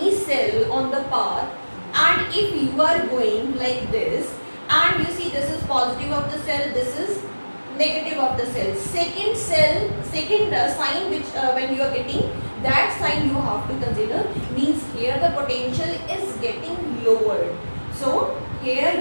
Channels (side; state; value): both; inverted; correlation -1.00